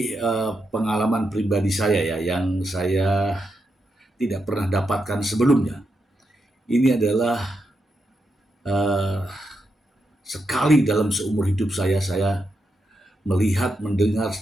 pengalaman pribadi saya ya, yang saya tidak pernah dapatkan sebelumnya. Ini adalah uh, sekali dalam seumur hidup saya melihat, mendengar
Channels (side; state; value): both; normal; correlation 0.84